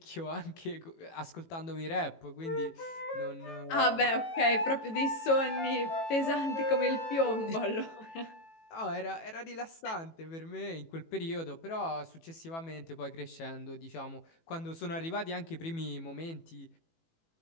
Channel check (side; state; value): right; late; 18 ms